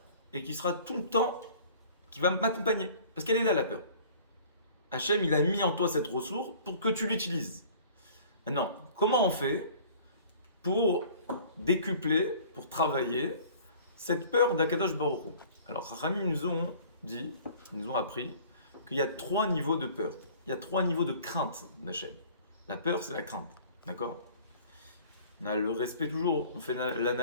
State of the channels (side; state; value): both; inverted; correlation -0.49